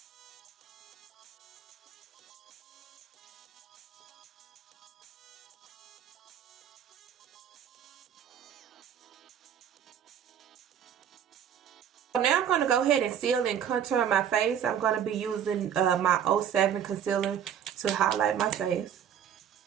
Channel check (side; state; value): left; quieter; 8.9 dB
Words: So now I'm going to go ahead and seal and contour my face. I'm going to be using my 07 concealer to highlight my face.